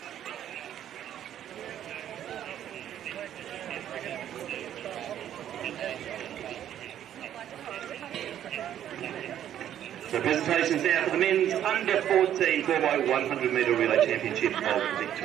So presentations now for the men's under 14 4x100 metre relay championship of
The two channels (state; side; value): quieter; left; 10.8 dB